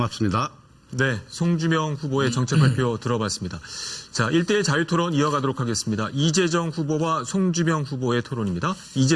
네, 송주명 후보의 정책 발표 들어봤습니다. 자, 1대1 자유토론 이어가도록 하겠습니다. 이재정 후보와 송주명 후보의 토론입니다.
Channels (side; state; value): both; identical; correlation 1.00